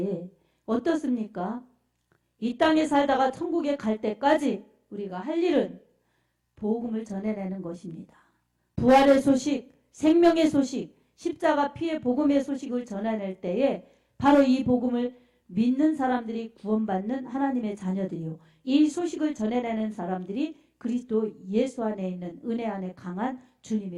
어떻습니까? 이 땅에 살다가 천국에 갈 때까지 우리가 할 일은 복음을 전해내는 것입니다. 부활의 소식, 생명의 소식, 십자가 피의 복음의 소식을 전해낼 때에 바로 이 복음을 믿는 사람들이 구원받는 하나님의 자녀들이요. 이 소식을 전해내는 사람들이 그리스도 예수 안에 있는 은혜 안에 강한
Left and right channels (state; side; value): identical; both; correlation 1.00